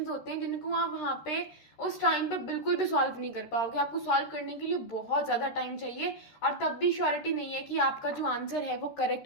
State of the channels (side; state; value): right; late; 13 ms